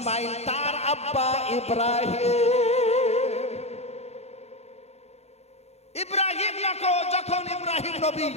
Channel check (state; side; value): late; right; 0.31 ms